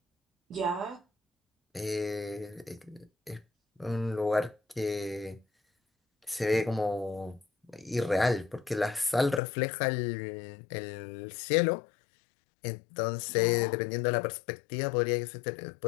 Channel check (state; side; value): drops out; right; at 9.4 s